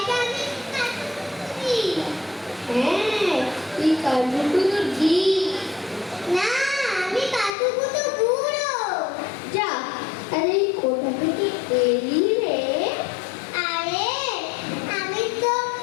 আমি কাকু বলি। হ্যাঁ, তুই কাকু কত দি না, আমি কাকু কত বুড়ো। যা, আরে কোথা থেকে এলি রে? আরে আমি তো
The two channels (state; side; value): drops out; right; at 7.5 s